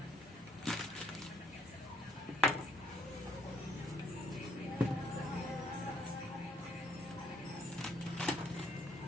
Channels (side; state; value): both; normal; correlation 0.65